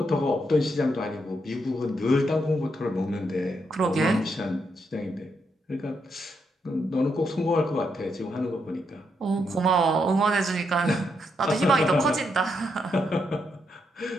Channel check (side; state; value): both; normal; correlation 0.79